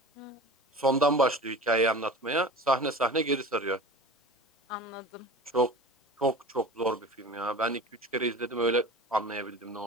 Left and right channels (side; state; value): both; normal; correlation 0.37